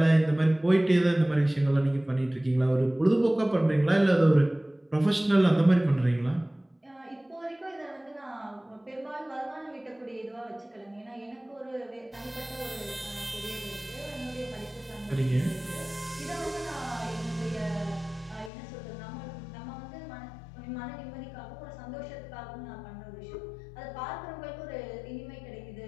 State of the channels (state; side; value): drops out; right; at 18.5 s